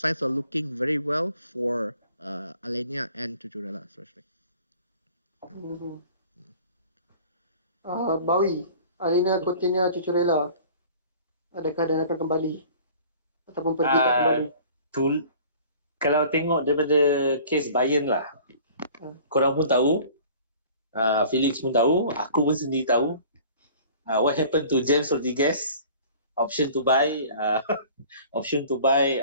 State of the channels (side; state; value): both; inverted; correlation -0.47